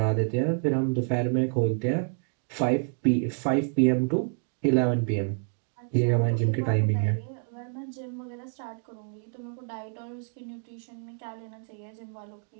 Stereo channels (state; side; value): silent; left; 57 dB below the other